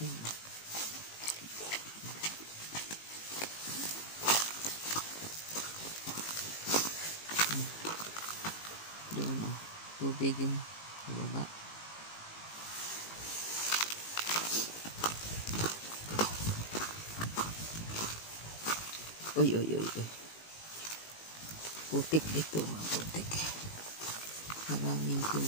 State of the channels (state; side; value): late; right; 18 ms